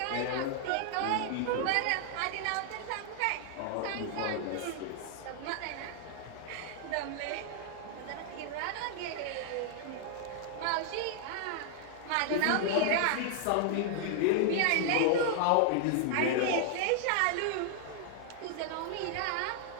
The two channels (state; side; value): different; both; correlation 0.00